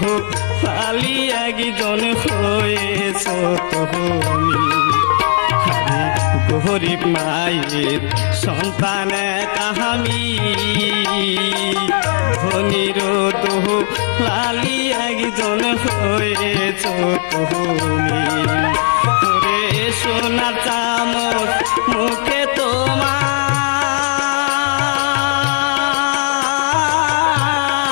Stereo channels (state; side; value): silent; right; digital silence